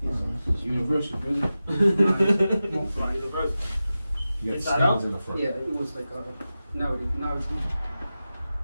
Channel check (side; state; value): both; inverted; correlation -0.94